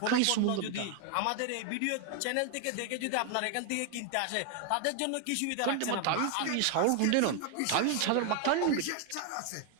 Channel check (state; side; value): different; both; correlation 0.00